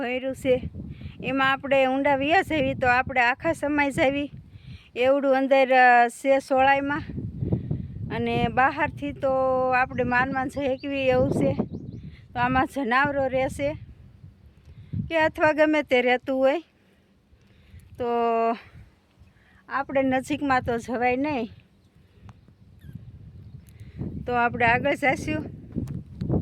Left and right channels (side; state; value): both; identical; correlation 1.00